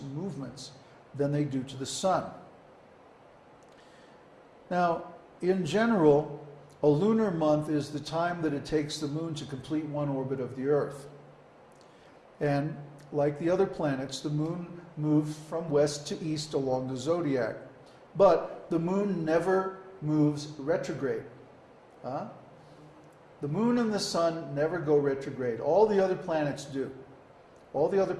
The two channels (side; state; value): both; identical; correlation 1.00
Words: than they do to the sun. Now, in general, a lunar month is the time that it takes the moon to complete one orbit of the Earth. And like the other planets, the moon moves from west to east along the zodiac. But the moon never moves retrograde. The moon and the sun never go retrograde. All the other planets do. All the other